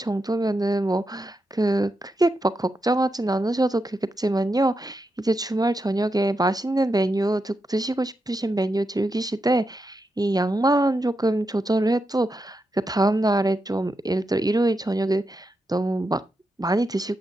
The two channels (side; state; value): both; normal; correlation 0.85